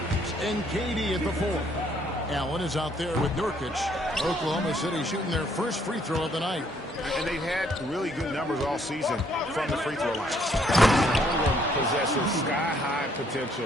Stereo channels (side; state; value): both; normal; correlation 0.67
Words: and KD at the four. Allen is out there with Nurkic. Oklahoma City shooting their first free throw of the night. And they've had really good numbers all season from the free throw line. Ingram possesses sky-high